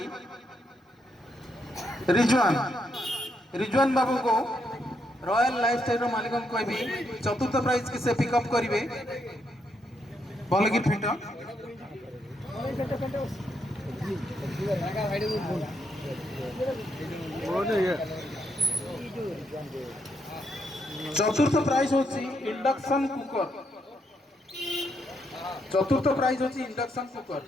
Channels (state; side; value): normal; both; correlation 0.78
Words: रिजवान बाबू को रॉयल लाइफस्टाइल रो मालिक को कहबी चतुर्थ प्राइज के से पिकअप करिवे भल कि फिट चतुर्थ प्राइज होची इंडक्शन कुकर चतुर्थ प्राइज होची इंडक्शन कुकर